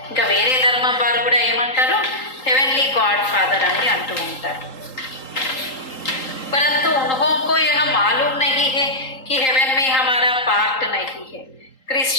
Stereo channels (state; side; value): late; right; 3.8 ms